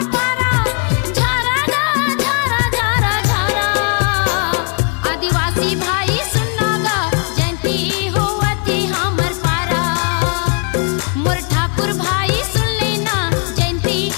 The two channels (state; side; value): quieter; right; 37.9 dB